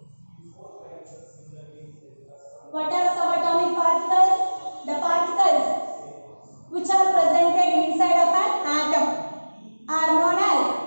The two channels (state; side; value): inverted; both; correlation -1.00